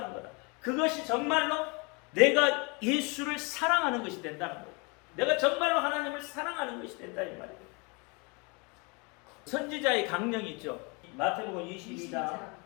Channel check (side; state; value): right; quieter; 30.6 dB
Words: 거다. 그것이 정말로 내가 예수를 사랑하는 것이 된다는 거예요. 내가 정말로 하나님을 사랑하는 것이 된다 이 말이에요. 선지자의 강령이 있죠. 마태복음 22장